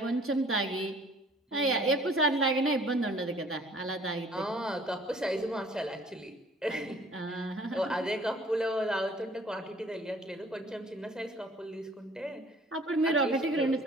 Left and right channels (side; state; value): both; normal; correlation 0.54